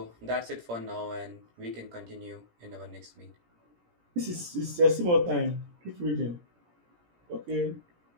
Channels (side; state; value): left; late; 17 ms